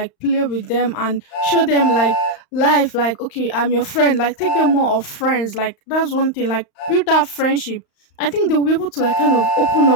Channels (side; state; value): right; late; 35 ms